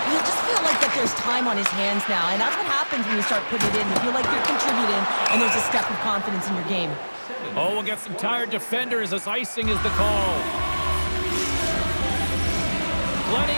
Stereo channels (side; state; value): both; inverted; correlation -1.00